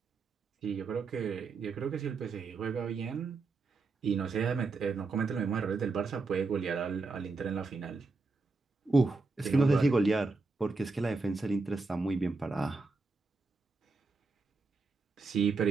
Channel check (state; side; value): quieter; left; 3.9 dB